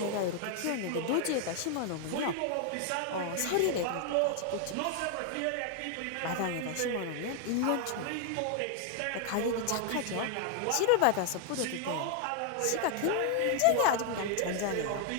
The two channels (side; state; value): both; different; correlation 0.00